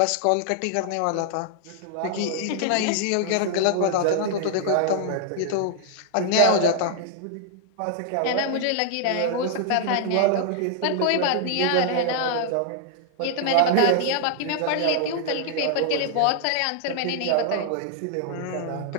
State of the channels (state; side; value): different; both; correlation -0.01